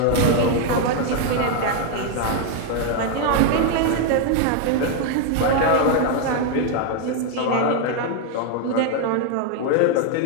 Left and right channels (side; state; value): both; different; correlation 0.00